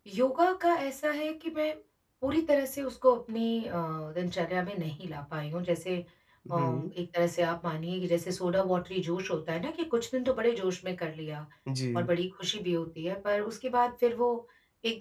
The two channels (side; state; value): both; identical; correlation 1.00